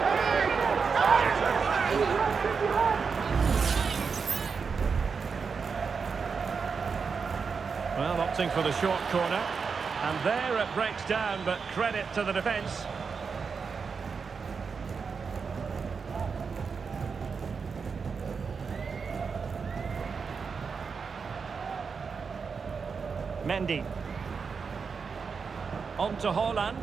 Well, opting for the short corner. And there it breaks down, but credit to the defence. Mendy. On to Haaland.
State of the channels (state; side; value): quieter; left; 5.5 dB